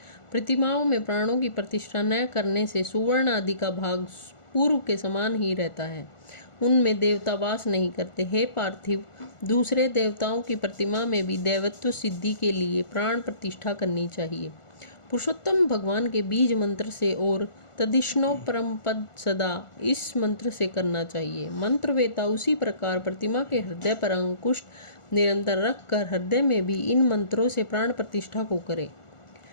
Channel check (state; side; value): late; right; 1.4 ms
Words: प्रतिमाओं में प्राणों की प्रतिष्ठा न करने से सुवर्ण आदि का भाग पूर्व के समान ही रहता है, उनमें देवता वास नहीं करते। हे पार्थिव, दूसरे देवताओं की प्रतिमा में भी देवत्व सिद्धि के लिए प्राण प्रतिष्ठा करनी चाहिए। पुरुषोत्तम भगवान के बीज मंत्र से और तदिष्णो परम पद सदा इस मंत्र से करना चाहिए। मंत्रवेता उसी प्रकार प्रतिमा के हृदय पर अंकुश निरंतर रखकर हृदय में भी इन मंत्रों से प्राण प्रतिष्ठा को करे।